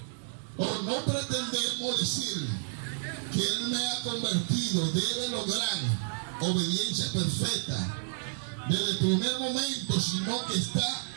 o no pretendemos decir que Él me ha convertido. Debe lograr obediencia perfecta desde el primer momento, sino que está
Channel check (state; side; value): silent; left; digital silence